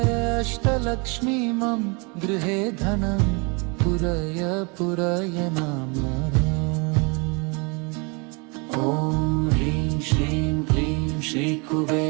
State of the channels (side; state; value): left; quieter; 31.3 dB